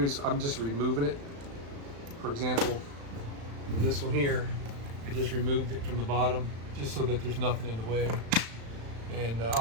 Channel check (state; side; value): late; left; 35 ms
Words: I'm just removing it. For example, this one here, I just removed it from the bottom just so that there's nothing in the way. And